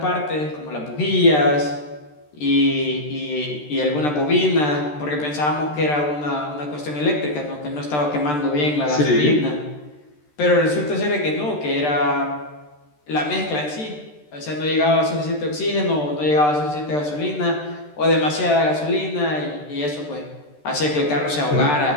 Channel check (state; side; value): late; right; 13 ms